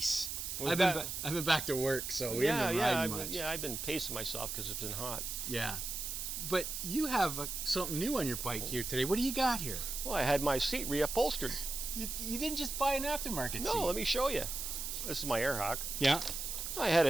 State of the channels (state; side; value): noise; right; hiss, 4 dB below the sound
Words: Was I've been back to work, so we haven't been riding much. Yeah, I've been pacing myself because it's been hot. Yeah. But you have something new on your bike here today. What do you got here? Well, I had my seat re-upholstered. You didn't just buy an aftermarket seat. No, let me show you. This is my air hawk. Yeah. I had